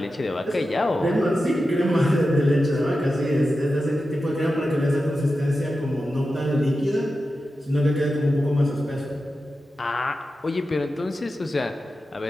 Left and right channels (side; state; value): both; normal; correlation 0.92